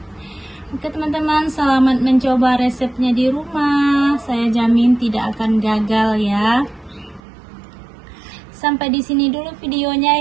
Oke teman-teman, selamat mencoba resepnya di rumah. Saya jamin tidak akan gagal ya. Sampai di sini dulu videonya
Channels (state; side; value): drops out; left; at 7.2 s